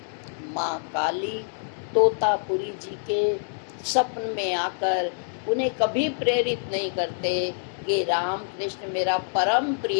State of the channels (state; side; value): silent; right; digital silence